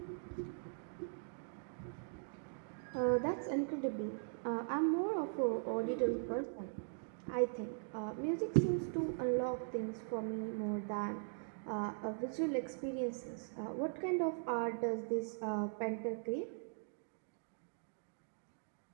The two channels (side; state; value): left; silent; digital silence